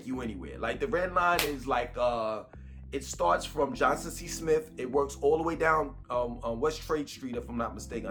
you anywhere. Like the red line is like, it starts from Johnson C. Smith. It works all the way down West Trade Street, if I'm not mistaken.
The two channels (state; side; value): identical; both; correlation 1.00